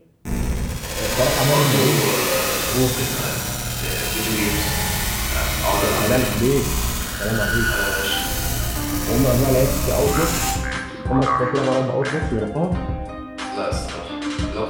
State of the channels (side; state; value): both; identical; correlation 1.00